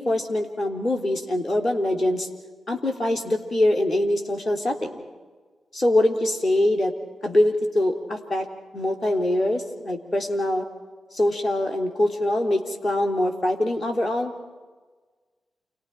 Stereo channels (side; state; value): both; normal; correlation 0.92